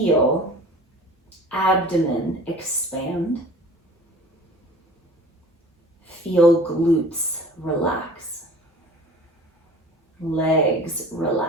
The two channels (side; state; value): both; normal; correlation 0.44